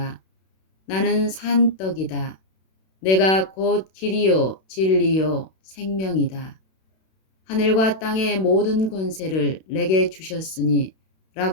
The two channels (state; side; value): late; right; 32 ms